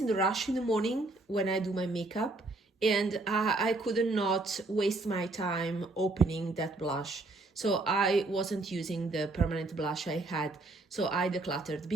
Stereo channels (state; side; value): quieter; left; 3.0 dB